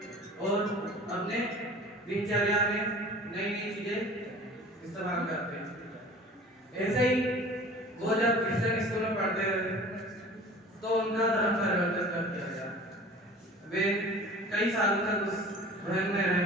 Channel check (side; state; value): both; normal; correlation 0.43